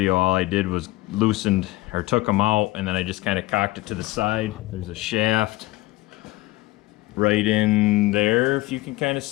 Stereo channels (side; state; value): right; quieter; 19.1 dB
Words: all I did was loosened or took them out, and then I just kind of cocked it to the side. There's a shaft right in there, if you can kind of